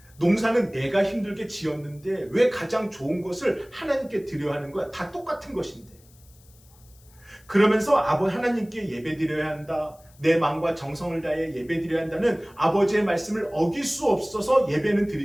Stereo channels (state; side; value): noise; left; hiss, 28 dB below the sound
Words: 농사는 내가 힘들게 지었는데 왜 가장 좋은 것을 하나님께 드려야 하는 거야? 다 똑같은 것인데. 그러면서 하나님께 예배드려야 한다. 내 마음과 정성을 다해 예배드려야 한다는 아버지의 말씀을 어길 수 없어서 예배는